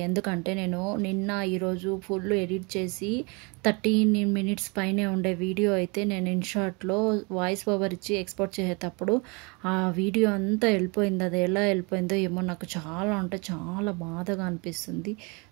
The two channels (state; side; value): quieter; left; 30.0 dB